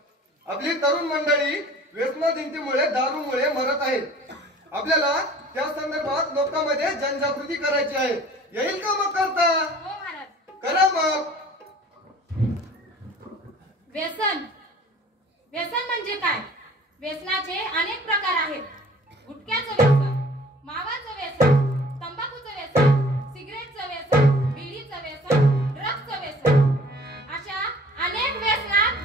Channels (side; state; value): both; normal; correlation 0.49